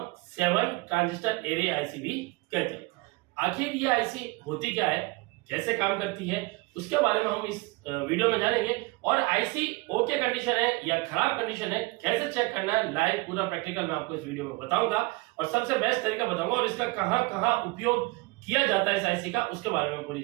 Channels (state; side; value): quieter; left; 24.4 dB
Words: 7 ट्रांजिस्टर एरे आईसी भी कहते हैं। आखिर ये आईसी होती क्या है, कैसे काम करती है, उसके बारे में हम इस वीडियो में जानेंगे। और आईसी ओके कंडीशन है या खराब कंडीशन है, कैसे चेक करना है, लाइव पूरा प्रैक्टिकल मैं आपको इस वीडियो में बताऊंगा और सबसे बेस्ट तरीका बताऊंगा और इसका कहां कहां उपयोग किया जाता है इस आईसी का, उसके बारे में पूरी